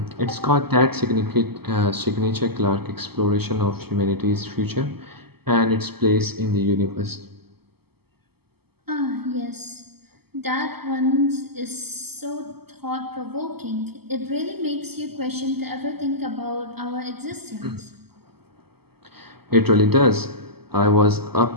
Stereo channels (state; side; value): late; left; 0.96 ms